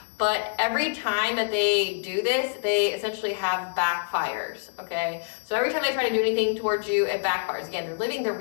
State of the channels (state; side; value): silent; right; digital silence